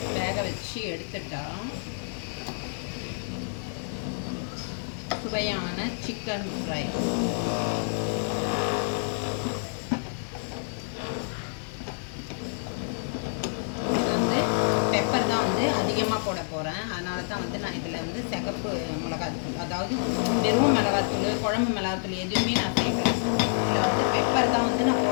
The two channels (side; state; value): right; silent; digital silence